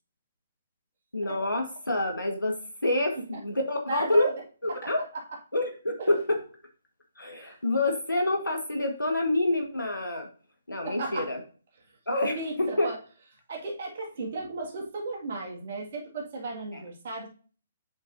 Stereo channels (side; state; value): both; inverted; correlation -0.78